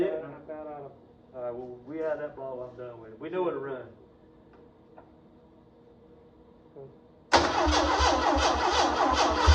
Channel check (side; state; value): both; identical; correlation 1.00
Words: I'm about out of. Alright, well, we had that ball. I'm done with it. We know it'll run.